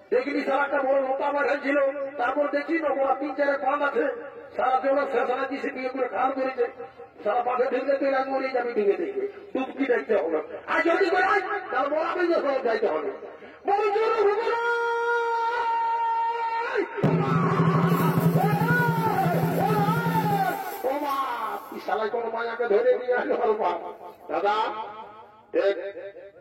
দেখিনি সারা একটা বড় মোটা মাঝাই ছিল তারপর দেখি না বড় 3-4 পান আছে সারা জন্য শেষানা দিছে বিয়ে করে খাল করেছে সারা পাশে ঢুকলে তুই রাগ মরিয়ে যাবি ঢুকে দেখবে টুপকি দেখতে হবে আর যদি করে তার বড় আপনি সব যাইতে হবে সালাই কোন মায়াকে ধরে নিয়ে আসলো দাদা দেখ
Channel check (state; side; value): identical; both; correlation 1.00